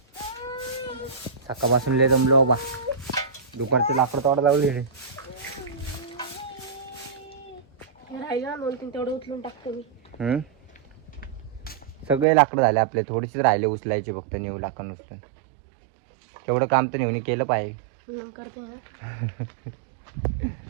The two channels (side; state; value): left; drops out; at 12.2 s